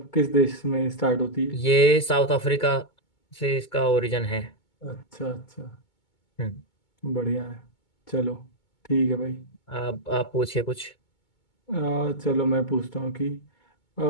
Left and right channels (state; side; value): late; right; 2.2 ms